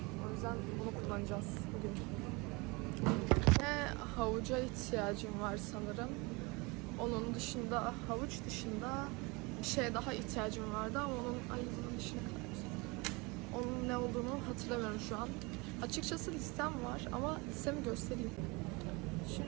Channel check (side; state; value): left; quieter; 26.7 dB